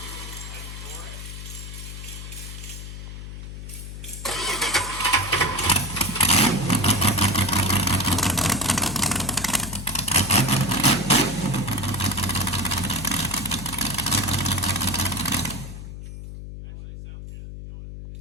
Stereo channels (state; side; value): noise; left; hum, 10 dB below the sound